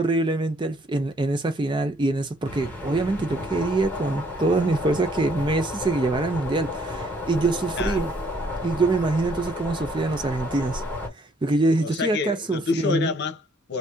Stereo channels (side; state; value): both; normal; correlation 0.65